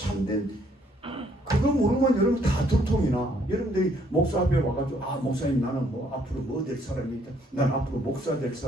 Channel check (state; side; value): normal; both; correlation 0.66